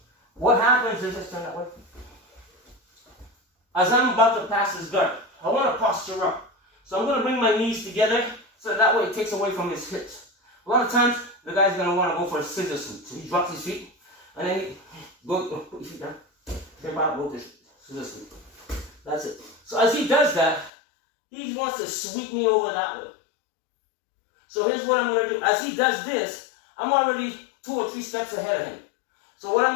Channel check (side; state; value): right; drops out; at 20.7 s